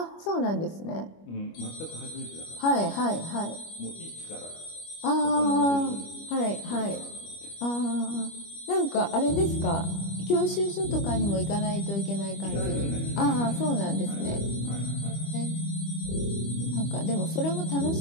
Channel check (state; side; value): late; right; 25 ms